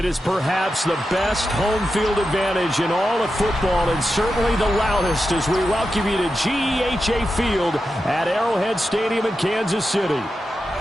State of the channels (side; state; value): both; normal; correlation 0.90